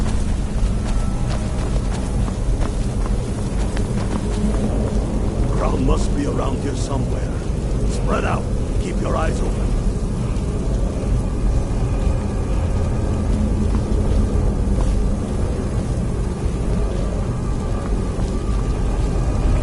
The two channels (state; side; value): identical; both; correlation 1.00